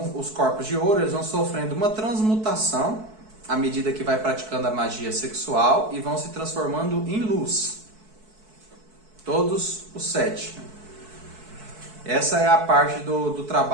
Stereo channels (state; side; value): late; left; 4.6 ms